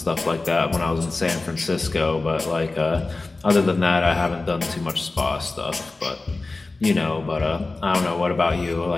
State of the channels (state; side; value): quieter; right; 3.4 dB